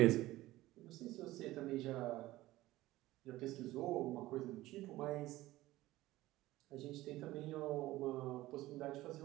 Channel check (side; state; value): left; quieter; 17.0 dB